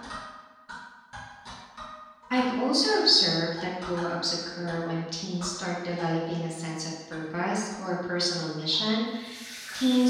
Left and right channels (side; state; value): both; identical; correlation 1.00